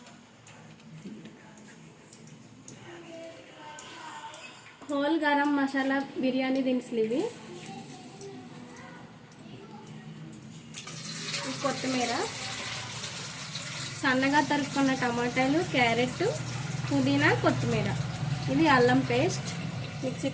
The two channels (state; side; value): identical; both; correlation 1.00